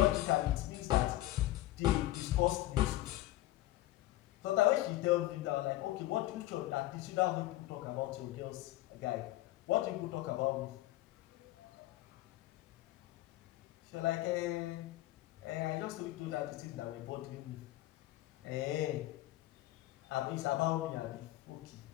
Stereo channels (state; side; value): quieter; right; 16.3 dB